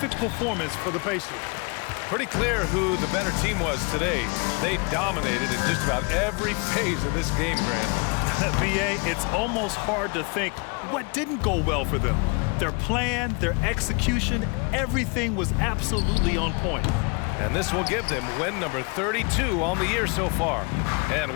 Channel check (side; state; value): right; quieter; 31.5 dB